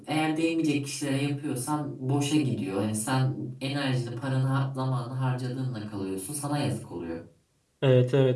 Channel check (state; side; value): identical; both; correlation 1.00